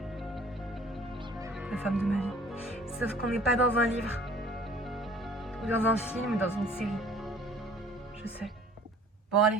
la femme de ma vie. Sauf qu'on n'est pas dans un livre, ou dans un film, ou dans une série. Je sais. Bon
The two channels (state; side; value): normal; both; correlation 0.51